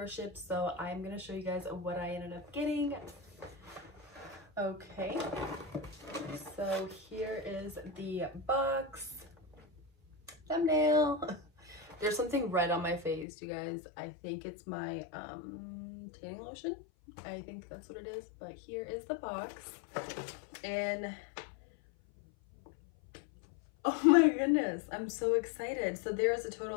So I'm gonna show you guys what I ended up getting. Okay, so here is the box. Thumbnail. There's something red on my face, you guys. I think it's my tanning lotion. I think that's what it is, but here is the box. And oh my goodness, I'm so excited. So there is a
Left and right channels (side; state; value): right; drops out; at 13.2 s